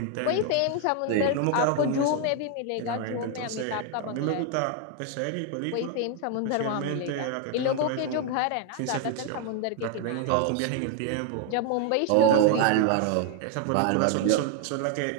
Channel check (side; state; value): both; different; correlation 0.00